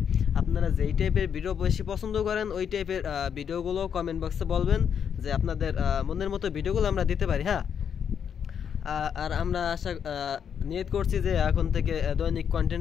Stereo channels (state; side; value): quieter; right; 7.8 dB